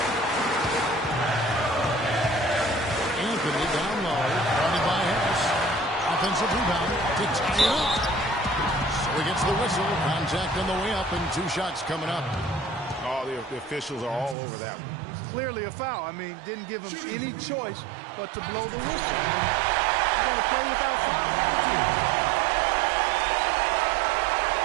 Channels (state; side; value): drops out; left; at 14.4 s